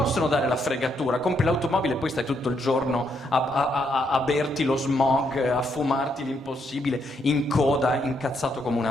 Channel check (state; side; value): normal; both; correlation 0.76